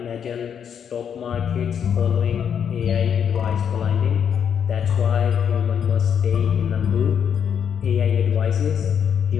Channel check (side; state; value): right; quieter; 7.9 dB